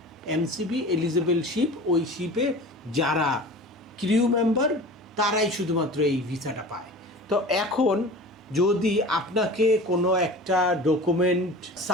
MCB eligible ship, ওই শিপে যারা ক্রিউ মেম্বার তারাই শুধুমাত্র এই ভিসাটা পায়। তো এখন যদি আপনাকে কোনো একটা ডকুমেন্ট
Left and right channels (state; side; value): normal; both; correlation 0.38